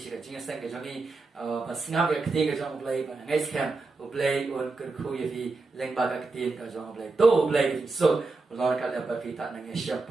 cái chính sang cái johnny và snap cái tiền cái trong play và ngay scam play on cái khu ye fi leng ba cái tiền cái trong play to play so lo cái là ba fi ta nang share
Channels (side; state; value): left; quieter; 3.7 dB